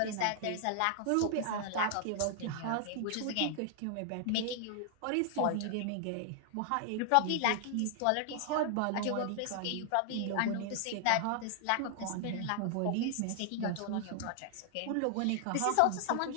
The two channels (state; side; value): different; both; correlation 0.00